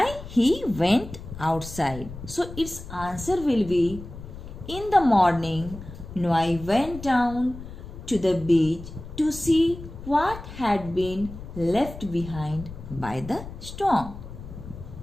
he went outside. So its answer will be in the morning Noah went down to the beach to see what had been left behind by the storm.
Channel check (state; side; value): noise; left; rumble, 13 dB below the sound